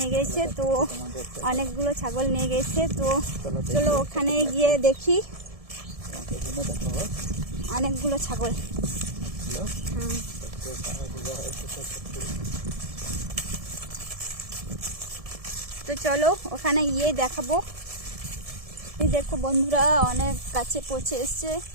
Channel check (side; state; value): left; late; 1.7 ms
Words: গেছে, তো অনেকগুলো ছাগল নিয়ে গেছে। তো চলো ওখানে গিয়ে দেখি অনেকগুলো ছাগল। তো চলো ওখানে গিয়ে দেখাবো। এই দেখো বন্ধুরা, অনেক কাছে পৌঁছে এসছে।